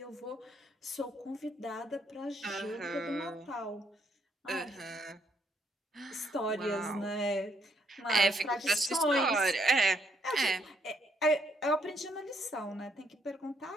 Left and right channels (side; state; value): both; normal; correlation 0.73